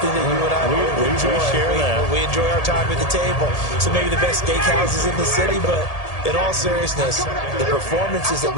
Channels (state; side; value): late; right; 1.8 ms